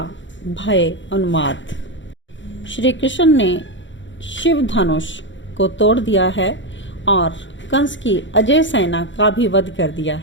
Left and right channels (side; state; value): right; late; 0.54 ms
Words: भय उन्माद। श्री कृष्ण ने शिव धनुष को तोड़ दिया है और कंस की अजय सेना का भी वध कर दिया